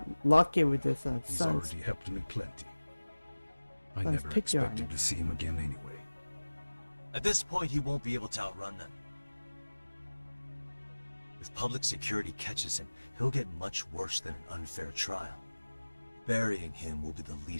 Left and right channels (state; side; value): inverted; both; correlation -1.00